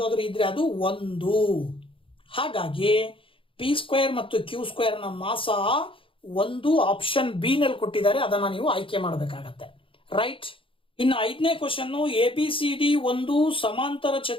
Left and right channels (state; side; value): late; right; 0.25 ms